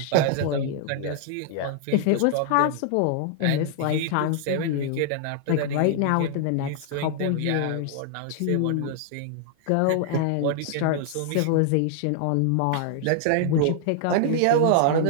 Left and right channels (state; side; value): different; both; correlation 0.00